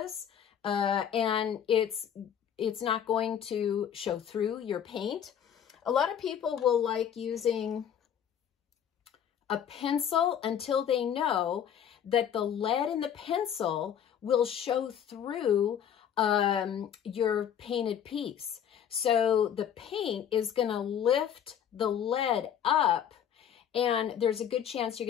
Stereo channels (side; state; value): right; quieter; 9.0 dB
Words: And it's not going to show through your paint. A lot of people will like using a pencil until they know that the lead in the pencil will show through your painted piece. So the paint is going to lift the lead up, and there's a good chance you're